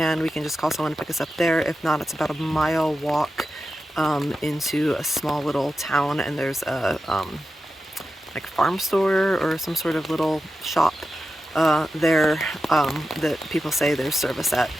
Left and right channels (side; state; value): both; normal; correlation 0.91